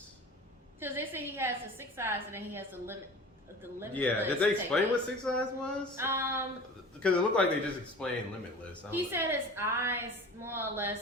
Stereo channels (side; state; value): both; normal; correlation 0.39